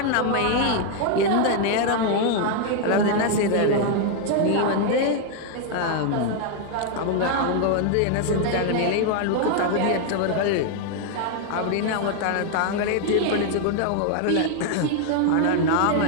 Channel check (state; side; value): different; both; correlation 0.00